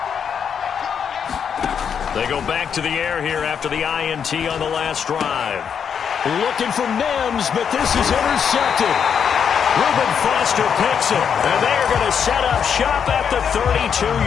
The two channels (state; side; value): quieter; right; 7.4 dB